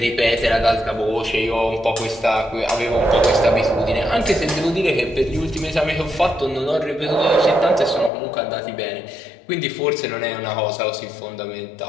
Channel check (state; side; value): drops out; right; at 8.1 s